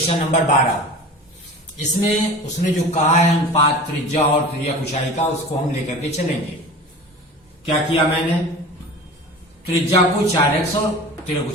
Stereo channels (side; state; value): both; normal; correlation 0.37